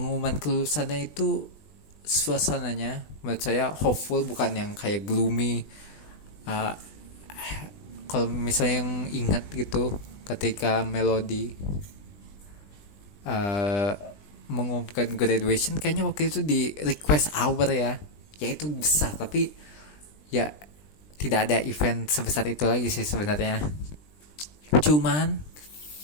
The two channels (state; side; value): late; right; 20 ms